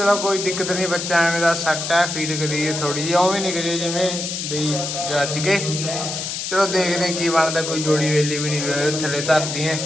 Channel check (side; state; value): left; noise; hiss, 4 dB below the sound